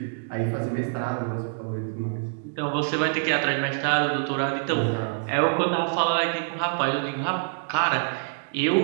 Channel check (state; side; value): silent; left; digital silence